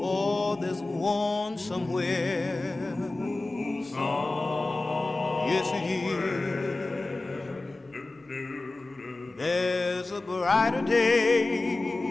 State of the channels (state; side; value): quieter; right; 3.1 dB